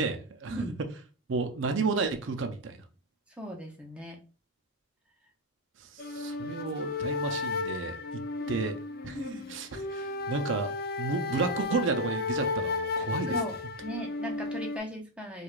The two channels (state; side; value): normal; both; correlation 0.05